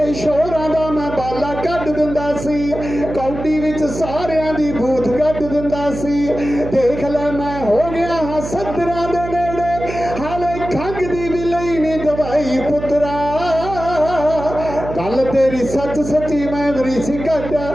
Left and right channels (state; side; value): noise; right; hum, 9 dB below the sound